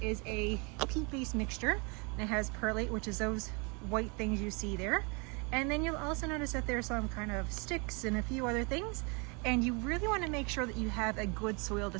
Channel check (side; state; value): left; quieter; 31.9 dB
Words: is a peat-based mixture. It has perlite, which is those white things you see there. And then you'll also notice that there's some kind of sticks and a few other things. And you really want to make sure that you have a good soil to